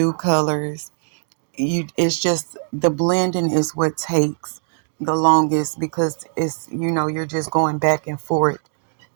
colors, it's just the blending is what takes the longest, because it's, you're just going back and forth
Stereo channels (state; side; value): silent; left; digital silence